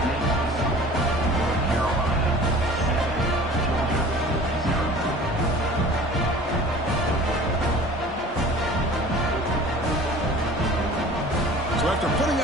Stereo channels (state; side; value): normal; both; correlation 0.45